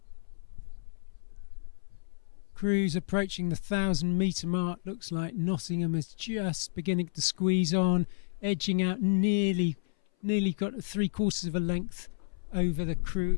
Crews approaching the 1,000-metre mark. Looks like Nottingham is just beginning to squeeze on, edging out nearly got 3/4 of a length over the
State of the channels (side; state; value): right; silent; 56 dB below the other